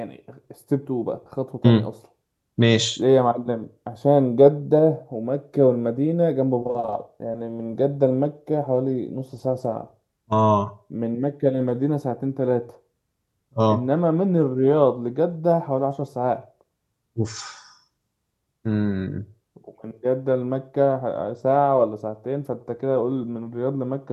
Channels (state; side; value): identical; both; correlation 1.00